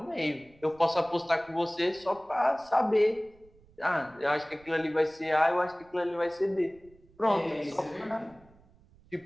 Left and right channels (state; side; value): noise; right; rumble, 28 dB below the sound